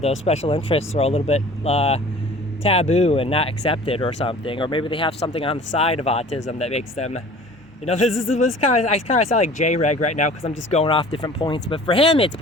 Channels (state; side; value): normal; both; correlation 0.46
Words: special interests are a little bit taboo and not accepted or something. Or maybe they have something on the side of autism that makes them, you know, this kind of, I kind of sound like J-Reg right now because I'm just going off different points. But for him, it's